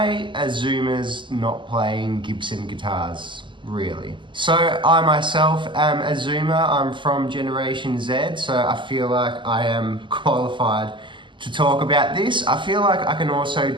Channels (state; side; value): late; left; 0.24 ms